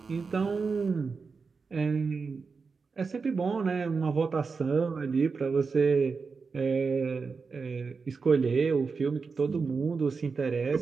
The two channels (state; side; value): quieter; left; 4.9 dB